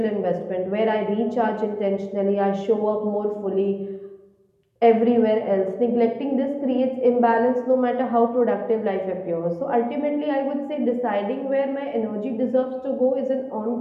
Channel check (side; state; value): both; identical; correlation 1.00